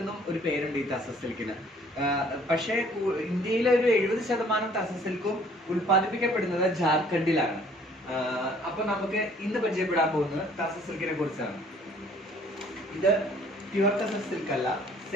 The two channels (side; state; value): both; normal; correlation 0.58